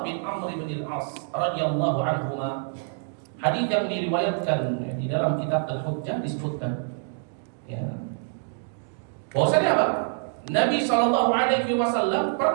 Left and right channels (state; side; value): silent; left; digital silence